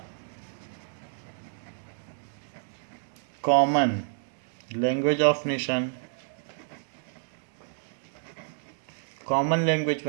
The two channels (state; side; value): silent; left; digital silence